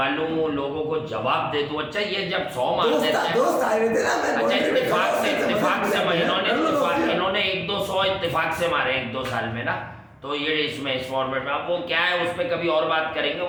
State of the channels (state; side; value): identical; both; correlation 1.00